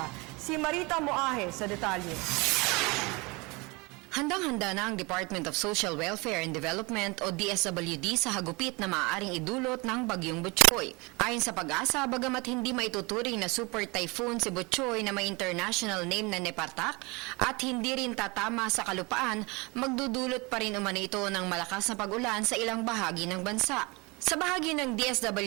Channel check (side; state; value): left; quieter; 26.4 dB